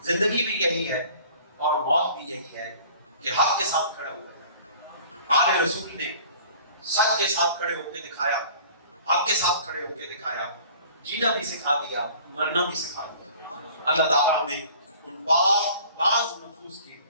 زندگی بھی یہی ہے اور موت بھی یہی ہے کہ حق کے ساتھ کھڑا ہوا ہے۔ آل رسول نے سچ کے ساتھ کھڑے ہو کے دکھایا، حق کے ساتھ کھڑے ہو کے دکھایا، جینا بھی سکھا دیا، مرنا بھی سکھا دیا۔ اللہ تعالیٰ ہمیں ان بعض نفوس کی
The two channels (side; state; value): both; inverted; correlation -0.48